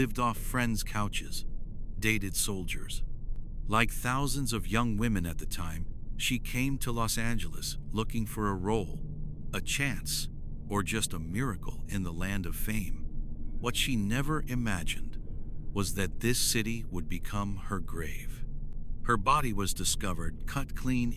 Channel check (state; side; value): identical; both; correlation 1.00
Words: off friends' couches, dated soldiers. Like thousands of young women at the time, she came to Los Angeles looking for a role, a chance, or just a miracle in the land of fame. What she never imagined was that this city would become her grave. Her body was discovered cut clean